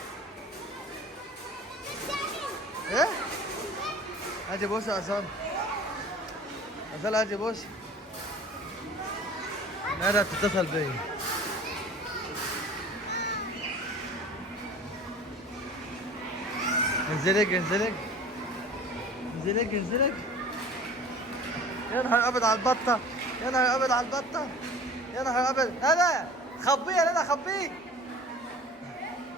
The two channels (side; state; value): both; normal; correlation 0.43